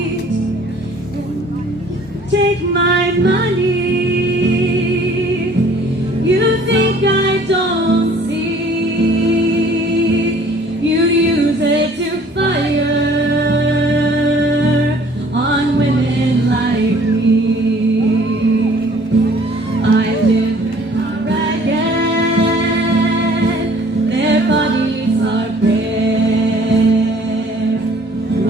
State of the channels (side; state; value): both; normal; correlation 0.55